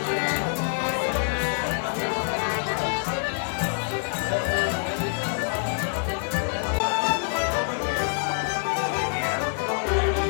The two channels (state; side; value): silent; right; 61 dB below the other